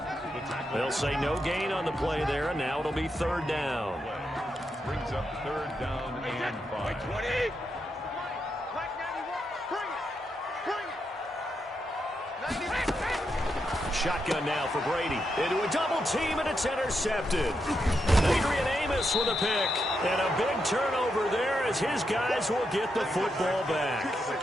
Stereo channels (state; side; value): normal; both; correlation 0.83